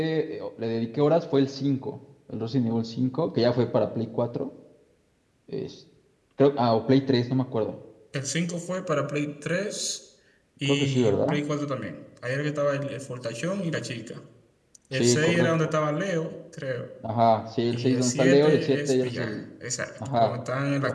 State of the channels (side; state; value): both; identical; correlation 1.00